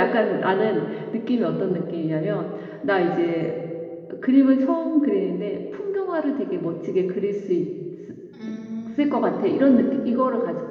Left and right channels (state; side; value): identical; both; correlation 1.00